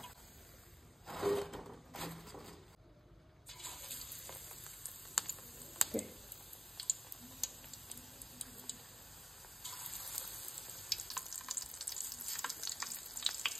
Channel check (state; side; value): normal; both; correlation 0.92